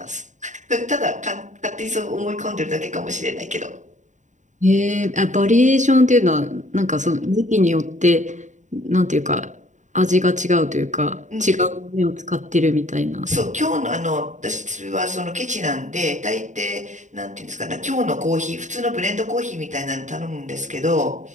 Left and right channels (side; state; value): left; late; 0.35 ms